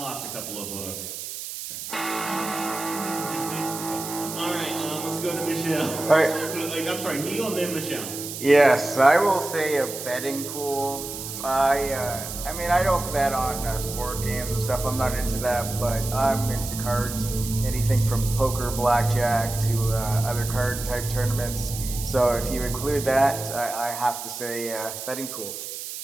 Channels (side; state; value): right; noise; hiss, 8 dB below the sound